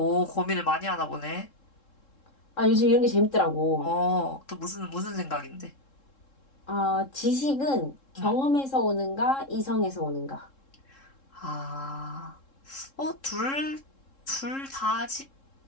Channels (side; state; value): right; late; 3.7 ms